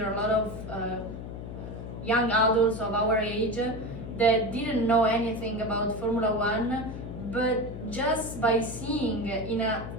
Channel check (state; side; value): noise; left; hum, 9 dB below the sound